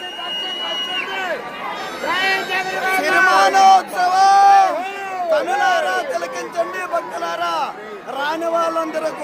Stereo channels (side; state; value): both; identical; correlation 1.00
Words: సిరిమానోత్సవం కనులారా తిలకించండి భక్తులు. అందరూ